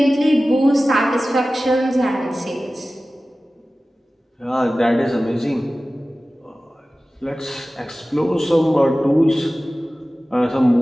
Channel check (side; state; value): both; normal; correlation 0.96